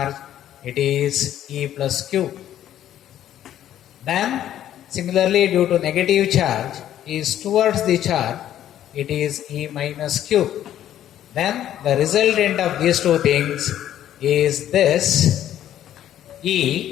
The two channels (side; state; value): right; quieter; 11.6 dB